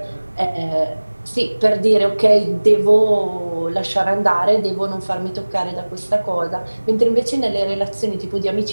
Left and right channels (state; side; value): inverted; both; correlation -1.00